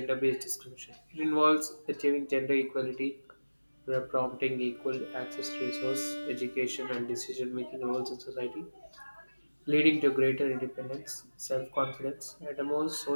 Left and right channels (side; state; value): both; inverted; correlation -1.00